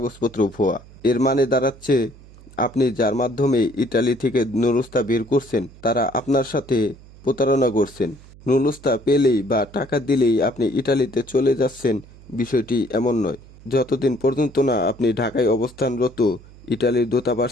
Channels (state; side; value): noise; right; hum, 22 dB below the sound